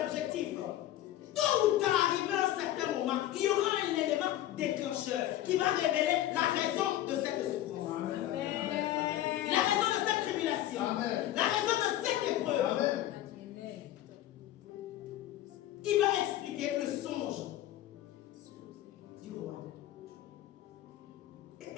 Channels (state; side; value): quieter; right; 13.6 dB